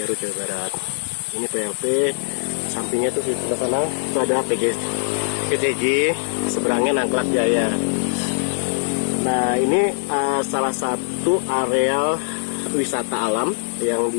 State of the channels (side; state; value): right; silent; digital silence